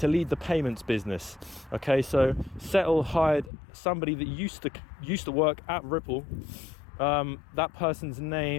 lead the payments business. Okay, so Settle hired somebody that used to work at Ripple. That person's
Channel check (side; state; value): right; drops out; at 3.5 s